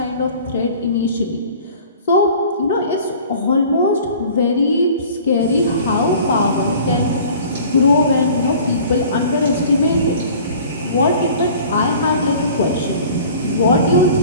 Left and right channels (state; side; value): inverted; both; correlation -0.46